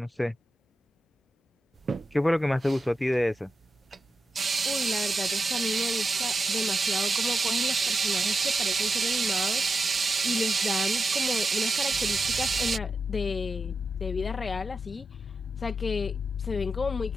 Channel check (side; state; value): both; normal; correlation 0.89